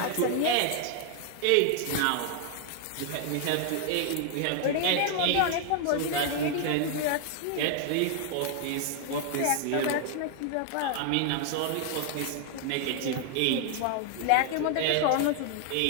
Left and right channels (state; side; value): different; both; correlation 0.00